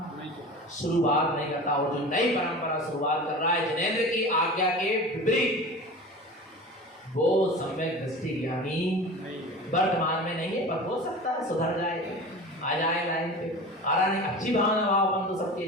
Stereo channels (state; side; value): normal; both; correlation 0.34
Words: शुरुआत नहीं करता। और जो नई परंपरा शुरुआत कर रहा है जिनेंद्र की आज्ञा के विपरीत, वो सम्यक दृष्टि ज्ञानी वर्तमान में नहीं है, पर हो सकता है सुधर जाए, आ जाए लाइन पे। आ रहा नहीं, अच्छी भावना भाव अपन तो सबके